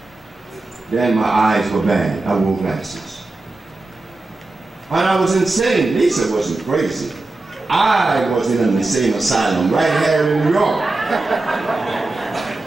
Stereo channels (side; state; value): left; quieter; 3.1 dB